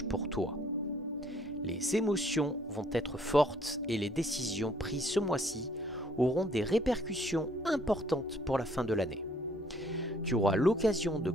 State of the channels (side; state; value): both; normal; correlation 0.63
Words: pour toi. Les émotions vont être fortes et les décisions prises ce mois-ci auront des répercussions importantes pour la fin de l'année. Tu auras l'occasion de